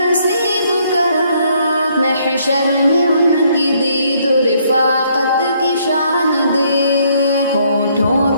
کر، محشر میں ان کی دید و رفاقت کی شان دے۔ ہونٹوں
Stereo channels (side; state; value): both; inverted; correlation -0.68